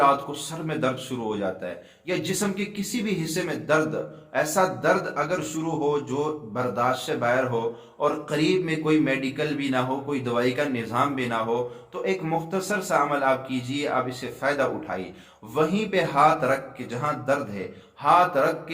کو سر میں درد شروع ہو جاتا ہے، یا جسم کے کسی بھی حصے میں درد، ایسا درد اگر شروع ہو جو برداشت سے باہر ہو اور قریب میں کوئی میڈیکل بھی نہ ہو، کوئی دوائی کا نظام بھی نہ ہو، تو ایک مختصر سا عمل آپ کیجئے، آپ اس سے فائدہ اٹھائیے۔ وہیں پہ ہاتھ رکھ کے، جہاں درد ہے، ہاتھ رکھ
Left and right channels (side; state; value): both; identical; correlation 1.00